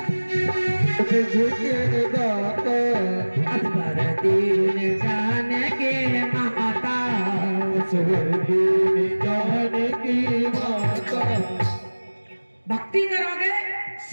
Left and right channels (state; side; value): inverted; both; correlation -1.00